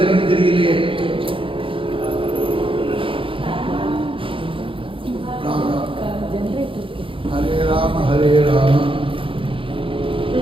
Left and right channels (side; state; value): left; late; 0.25 ms